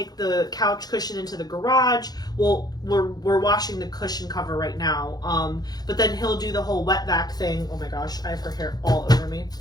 the couch cushion into the garage. Well, we're washing the cushion cover right now. But then he'll do the whole wet vac thing. Oh my gosh, I have her hair all over me.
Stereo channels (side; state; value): right; late; 0.19 ms